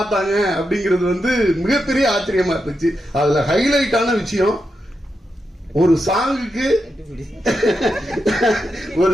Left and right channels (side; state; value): both; normal; correlation 0.86